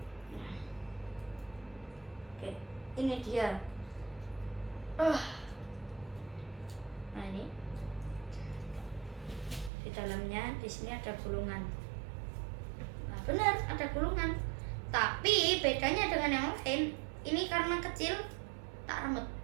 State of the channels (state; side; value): drops out; left; at 9.7 s